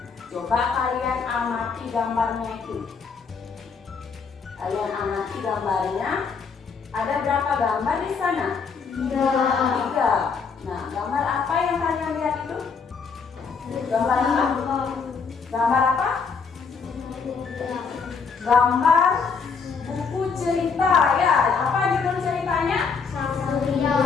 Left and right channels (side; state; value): right; quieter; 5.5 dB